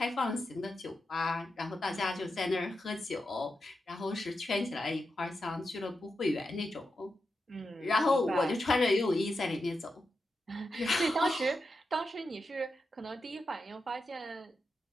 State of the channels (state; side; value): normal; both; correlation 0.88